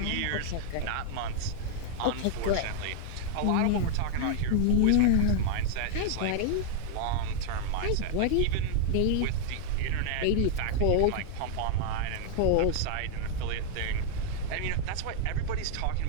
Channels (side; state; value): both; different; correlation 0.00